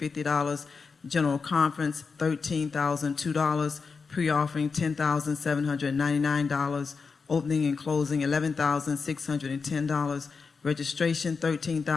General Conference, $13,002. Pre-offering, $10,799. Opening and closing, $11,610. Registration,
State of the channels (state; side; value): quieter; right; 5.0 dB